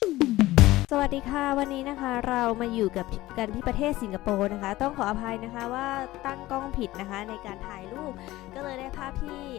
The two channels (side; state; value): right; quieter; 17.4 dB